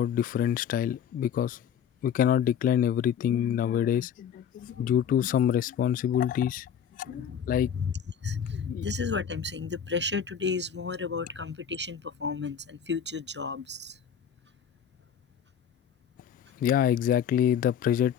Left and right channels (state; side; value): quieter; right; 8.4 dB